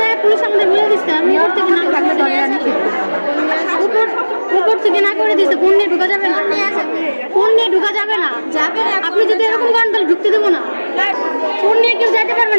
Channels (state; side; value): inverted; both; correlation -1.00